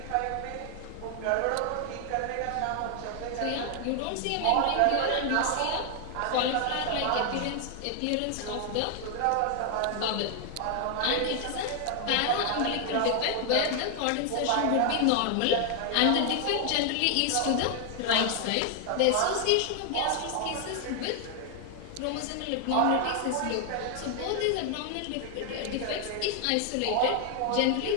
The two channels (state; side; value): different; both; correlation 0.00